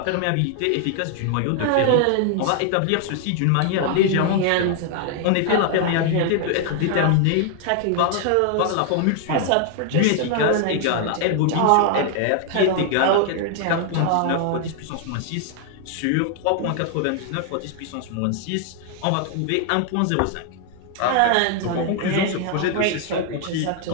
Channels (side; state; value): both; different; correlation 0.00